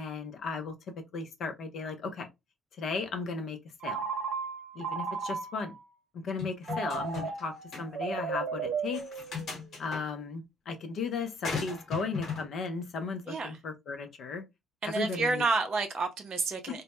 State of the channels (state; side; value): normal; both; correlation 0.60